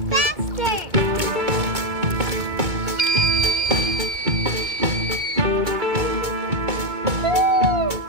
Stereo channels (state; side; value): late; left; 2.2 ms